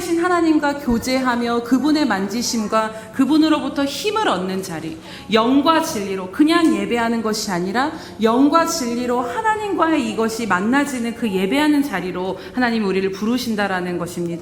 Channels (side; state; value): both; identical; correlation 1.00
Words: 하나님과 교제하며 그분의 만지심과 그분으로부터 힘을 얻는 자리, 영과 진리로 그냥 예배하는 것이 아니라 영과 진리로 하나님과의 이것이 만나지는 그 예배하는 자리로 하나님이 우리를 부르신다라는